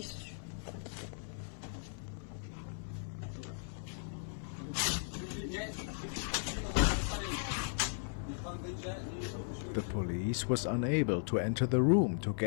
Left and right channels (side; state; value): right; silent; 53 dB below the other